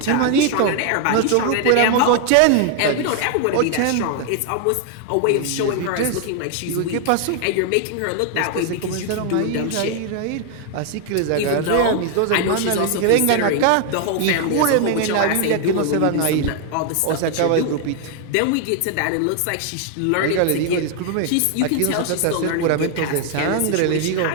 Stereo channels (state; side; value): different; both; correlation 0.00